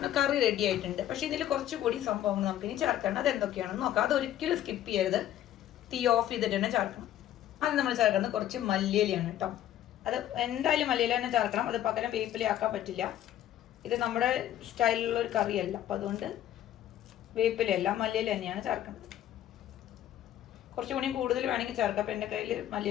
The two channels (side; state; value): right; quieter; 12.0 dB